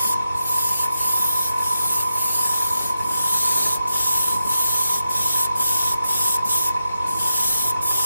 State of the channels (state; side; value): inverted; both; correlation -0.87